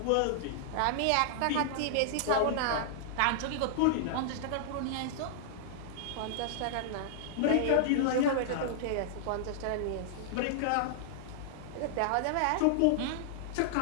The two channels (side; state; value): both; different; correlation -0.01